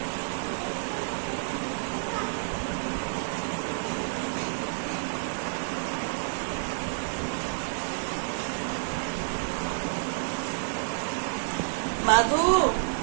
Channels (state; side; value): silent; left; digital silence